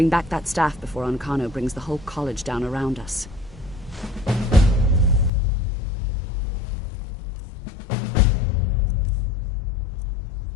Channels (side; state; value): right; drops out; at 5.3 s